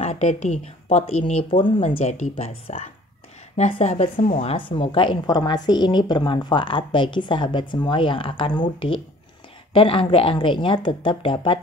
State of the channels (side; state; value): both; normal; correlation 0.52